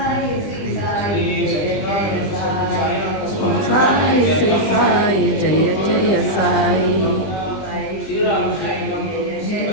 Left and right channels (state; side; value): late; right; 20 ms